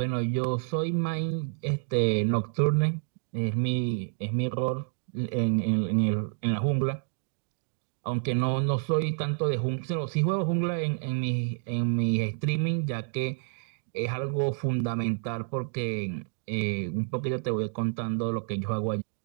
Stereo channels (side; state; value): left; silent; digital silence